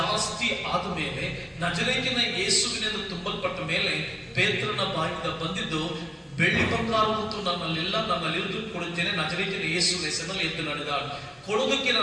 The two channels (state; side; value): identical; both; correlation 1.00